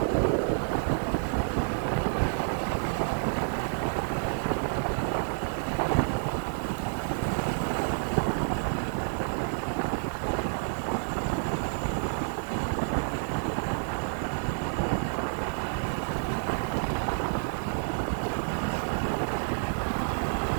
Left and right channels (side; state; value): left; silent; digital silence